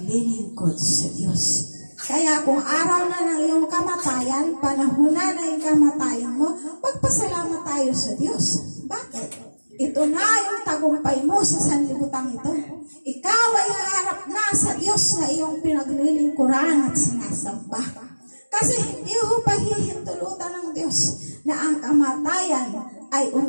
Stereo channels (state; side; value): inverted; both; correlation -1.00